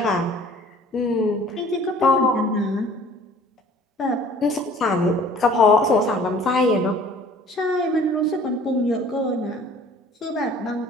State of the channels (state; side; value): normal; both; correlation 0.51